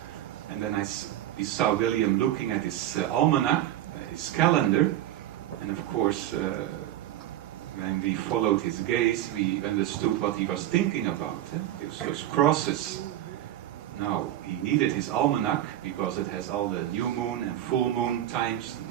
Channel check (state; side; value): quieter; left; 12.9 dB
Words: and then we saw William looking at his almanac, his calendar, and of course, when we followed his gaze, we understood what he was thinking about. Those crosses. Now, he needed his almanac because it has all the new moon and full moon times,